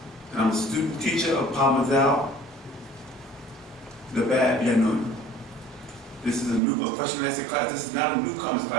and I'm a student teacher of Parmazal, the Bad Yanun. This is a question and answer class. This is not a newcomers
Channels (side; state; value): left; drops out; at 6.6 s